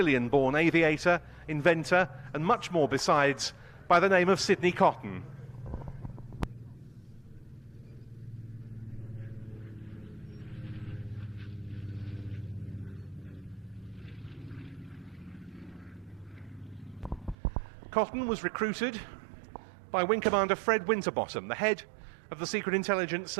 aviator, inventor, and much more besides, by the name of Sidney Cotton. Cotton was recruited by Wing Commander Fred Winterbottom, the head of the Secret Intelligence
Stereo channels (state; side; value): drops out; left; at 17.4 s